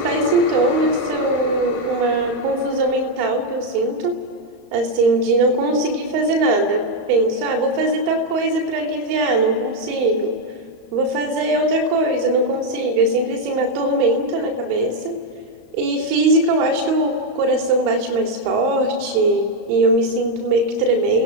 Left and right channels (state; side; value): late; left; 35 ms